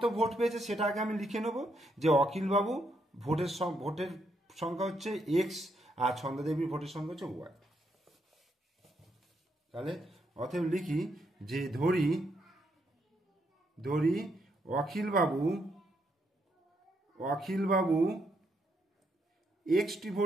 ভোট পেয়েছে সেটা আগে আমি লিখে নেব, যে অখিলবাবু ভোটের সংখ্যা হচ্ছে এক্স আর ছন্দা দেবীর ভোটের সংখ্যা হচ্ছে ওয়াই। তাহলে অতএব লিখি যে ধরি অখিলবাবু এক্সটি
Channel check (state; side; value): normal; both; correlation 0.77